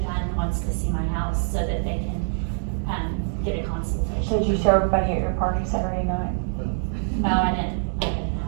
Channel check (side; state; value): left; silent; digital silence